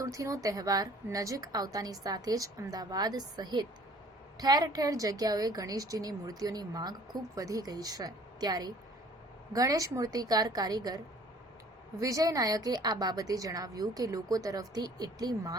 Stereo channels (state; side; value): normal; both; correlation 0.53